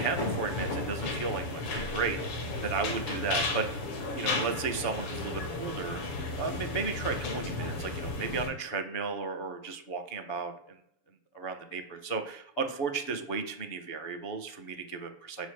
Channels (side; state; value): right; late; 7.0 ms